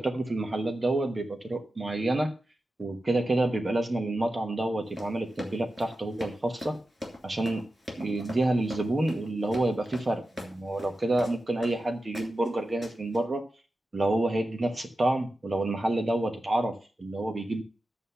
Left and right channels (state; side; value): normal; both; correlation 0.92